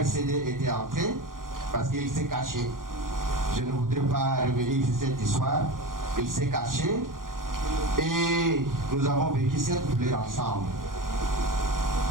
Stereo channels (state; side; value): late; left; 0.90 ms